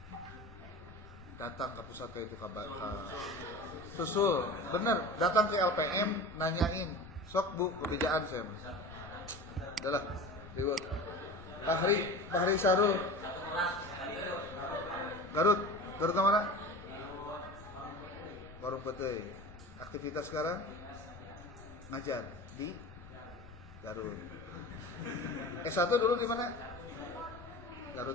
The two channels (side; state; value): left; noise; rumble, 18 dB below the sound